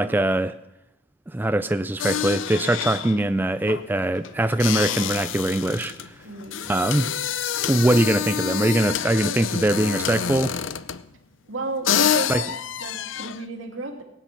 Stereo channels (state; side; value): normal; both; correlation 0.64